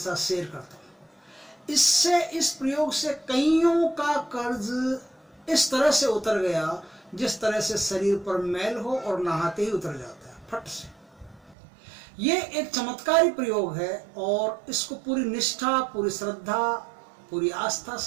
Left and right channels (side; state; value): left; drops out; at 11.6 s